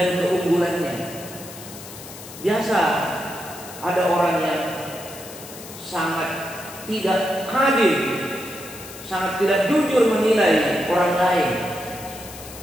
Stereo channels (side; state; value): left; noise; hiss, 15 dB below the sound